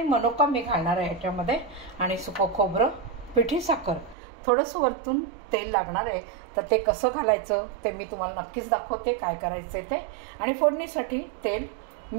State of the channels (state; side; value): drops out; left; at 4.2 s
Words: मनुका मी घालणार आहे ह्याच्यामध्ये, आणि सुकं खोबरं, पिठी साखर, थोडंसं वरतून तेल लागणार आहे। तर ते कसं घालायचं ते मी तुम्हाला नक्कीच दाखवते, काय करायचे ते, आणि फोडणीसाठी तेल,